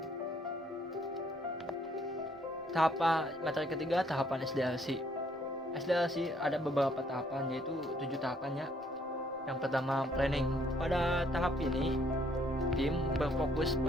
Materi ketiga, tahapan SDLC. SDLC ada beberapa tahapan, yaitu 7 tahapannya. Yang pertama, planning. Pada tahap ini, tim berfokus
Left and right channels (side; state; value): both; normal; correlation 0.66